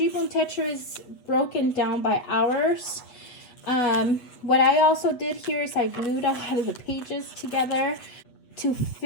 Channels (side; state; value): right; late; 8.2 ms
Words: Tetra is broken down by hours. What I also did here is I glued a lot of the pages together to